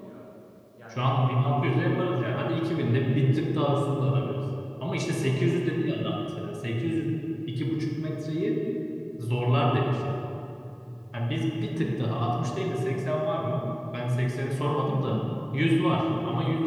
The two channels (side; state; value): both; identical; correlation 1.00